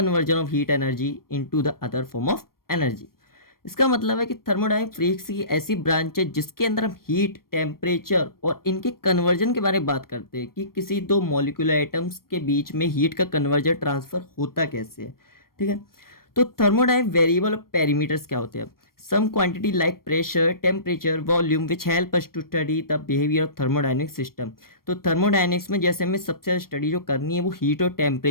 of heat energy into the other form of energy. इसका मतलब है कि थर्मोडायनेमिक फिजिक्स की ऐसी ब्रांच है जिसके अंदर हम हीट, टेम्परेचर और इनके कन्वर्जन के बारे में बात करते हैं कि किसी दो मॉलिक्यूलर आइटम्स के बीच में हीट का कन्वर्जन ट्रांसफर होता कैसे है। ठीक है। तो थर्मोडायनेमिक वेरिएबल और पैरामीटर्स क्या होते हैं। Some quantity like pressure, temperature, volume which help us to study the behaviour of thermodynamic system. तो थर्मोडायनेमिक्स में जैसे हमें सबसे ज़्यादा स्टडी जो करनी है वो हीट और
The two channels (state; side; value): late; right; 0.93 ms